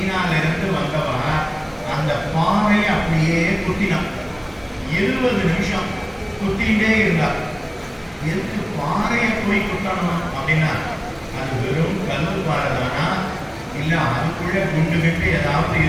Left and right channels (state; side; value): identical; both; correlation 1.00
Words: இருந்து வந்தவன் அந்த பாறையை அப்படியே குத்தினான். 20 நிமிஷம் குத்திட்டே இருந்தார். எதுக்கு பாறையை போய் குத்தணும் அப்படின்னா, அது வெறும் கல்லு பாறை தானா இல்ல அதுக்குள்ள குண்டு விட்டு ஏதாவது